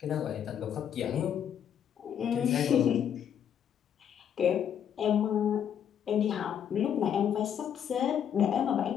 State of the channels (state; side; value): quieter; right; 8.9 dB